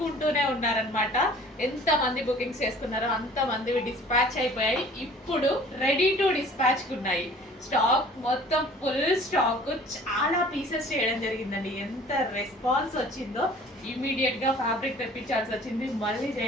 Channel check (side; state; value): both; normal; correlation 0.49